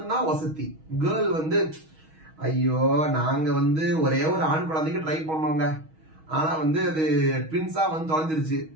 வசதி. கேர்ள் வந்து ஐயோ நாங்க வந்து ஒரே ஒரு ஆண் குழந்தைக்கு ட்ரை பண்ணோங்க, ஆனா வந்து அது ட்வின்ஸா வந்து தொலைஞ்சிருச்சு.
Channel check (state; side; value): late; left; 6.3 ms